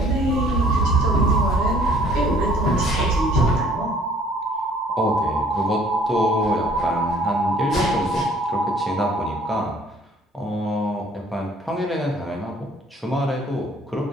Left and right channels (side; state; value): both; normal; correlation 0.57